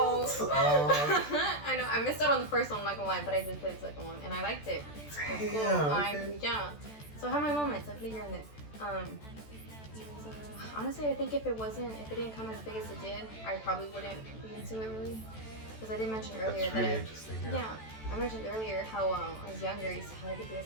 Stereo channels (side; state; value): right; late; 14 ms